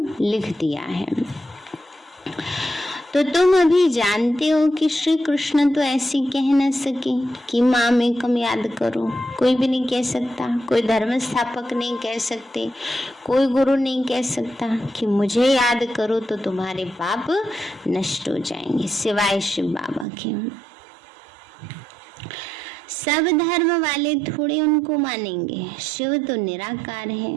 लिख दिया है। तो तुम अभी जानते हो कि श्री कृष्ण तो ऐसी कह न सके कि माँ में कम याद करो। कोई भी नहीं कह सकता, कोई धर्म स्थापक नहीं कह सकते, कोई गुरु नहीं कह सकता कि मुझे याद करो तो तुम्हारे पाप नष्ट हो जाएंगे, सिवाय शिव बाबा के। सब धर्म वाले थोड़े उनको मानेंगे। शिव तो निराकार है।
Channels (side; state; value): left; drops out; at 20.1 s